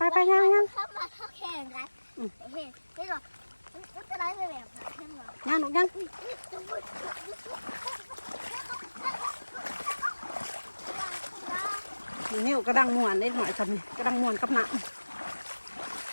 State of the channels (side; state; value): both; inverted; correlation -1.00